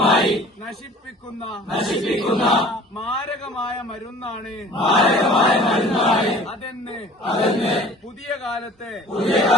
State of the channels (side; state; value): both; normal; correlation 0.47